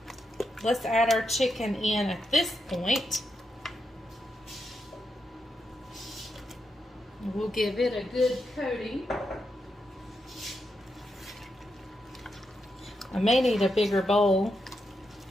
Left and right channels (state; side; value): normal; both; correlation 0.84